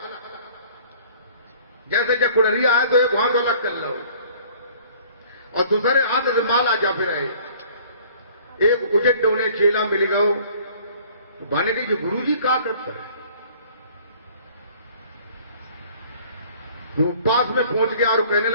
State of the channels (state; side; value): inverted; both; correlation -0.53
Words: जैसे जब कुड़रिया है तो एक हाथ अलग कर लो, और दूसरे हाथ से माला जा फिर रहे। एक उजट डोने चेला मिल गयो, बने गई गुरु जी क्या करते हैं। तो पास में पहुंच गया और कहने